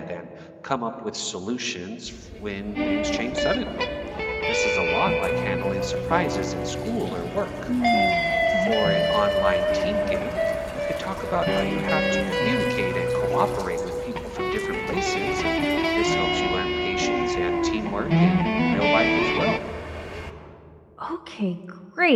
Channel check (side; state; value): both; identical; correlation 1.00